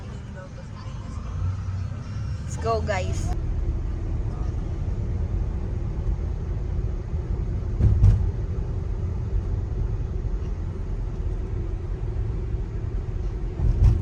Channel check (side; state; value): both; identical; correlation 1.00